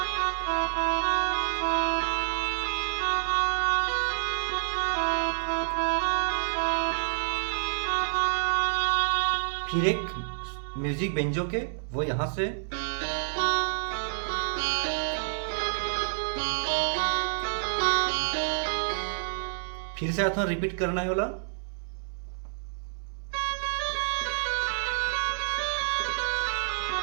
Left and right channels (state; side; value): silent; left; 59 dB below the other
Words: फिर एक म्यूजिक बेंजो के वो यहां से, फिर से आता रिपीट करना है वाला,